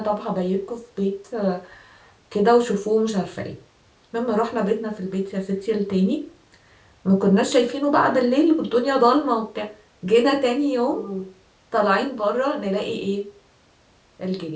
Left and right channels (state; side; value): identical; both; correlation 1.00